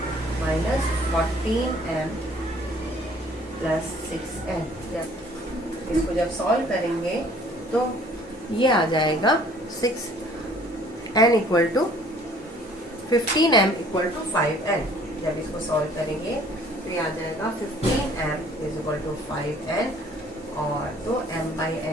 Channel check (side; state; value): both; normal; correlation 0.56